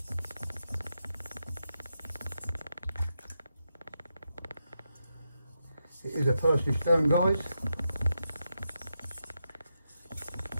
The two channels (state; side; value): inverted; both; correlation -0.85